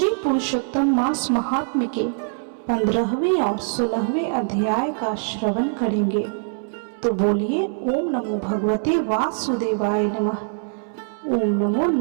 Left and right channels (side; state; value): left; silent; 64 dB below the other